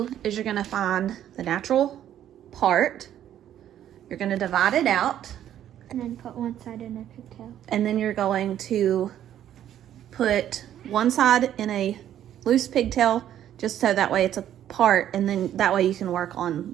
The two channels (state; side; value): quieter; left; 11.0 dB